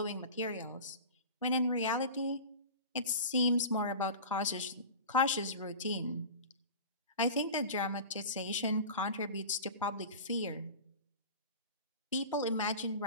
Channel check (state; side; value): inverted; both; correlation -0.34